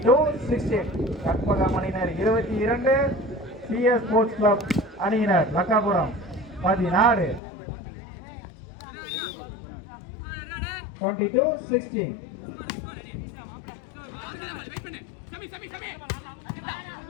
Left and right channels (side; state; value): right; drops out; at 7.4 s